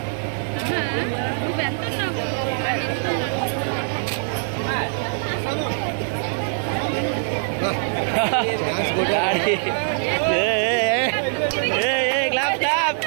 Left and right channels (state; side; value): silent; left; 59 dB below the other